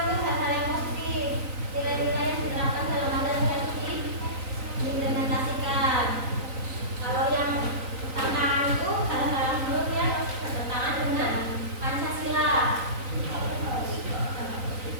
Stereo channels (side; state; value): left; late; 3.9 ms